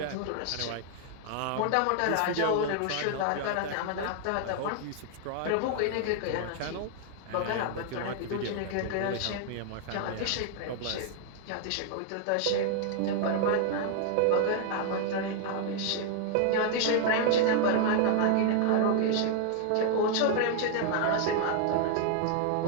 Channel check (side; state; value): both; different; correlation 0.00